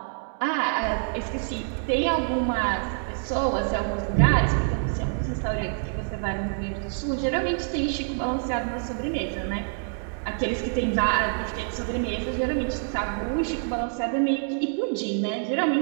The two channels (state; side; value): silent; left; 61 dB below the other